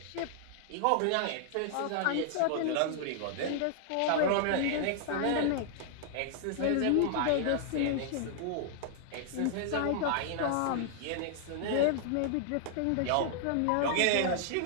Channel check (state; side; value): different; both; correlation -0.01